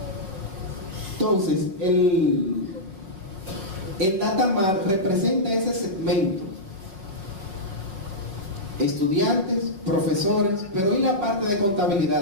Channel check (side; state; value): left; late; 5.1 ms